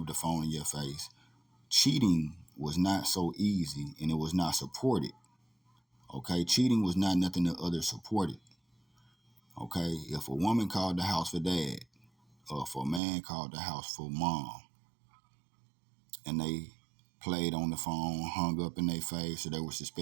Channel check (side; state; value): left; drops out; at 13.0 s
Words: the phone in your face. Cheating was not so easy and it was not supported, okay? Cheating was not nothing that others supported, okay? If a woman called the house for dad, or if a man called the house for mom, and they played on the phone, hung up in their face, or they were